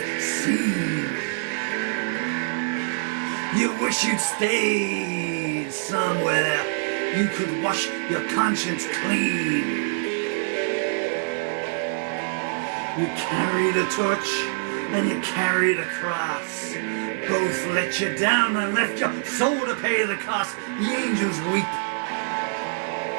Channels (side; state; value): left; silent; digital silence